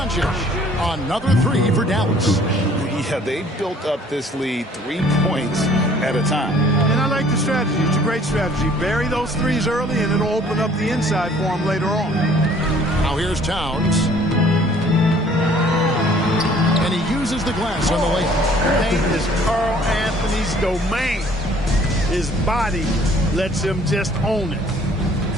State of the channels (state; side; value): normal; both; correlation 0.56